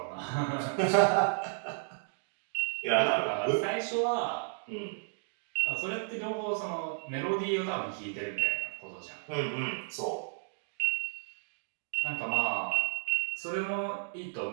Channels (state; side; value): silent; left; digital silence